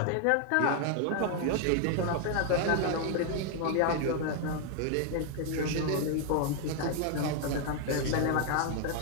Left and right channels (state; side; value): different; both; correlation 0.00